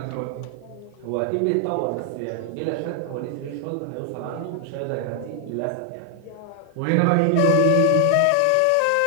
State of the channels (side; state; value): both; different; correlation 0.00